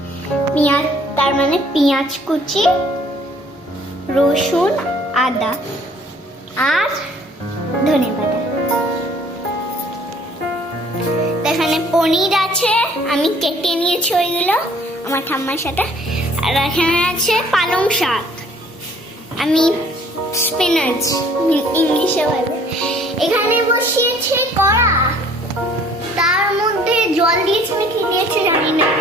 পেঁয়াজ, তার মানে পেঁয়াজ কুচি, রসুন, আদা আর ধনে পাতা। এখানে পনির আছে, আমি কেটে নিয়েছি ওইগুলো আমার ঠাম্মার সাথে। আর এখানে আছে পালং শাক, আমি স্পিনাচ ইংলিশে বলে। এখানে বসিয়েছে কড়া, তার মধ্যে জল দিয়েছে না কি দিয়েছে জানি না,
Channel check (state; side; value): normal; both; correlation 0.57